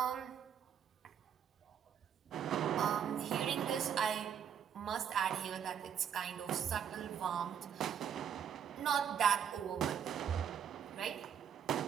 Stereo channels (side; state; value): left; quieter; 8.4 dB